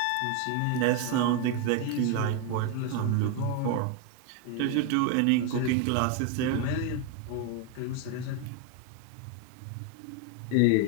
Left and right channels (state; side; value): different; both; correlation 0.01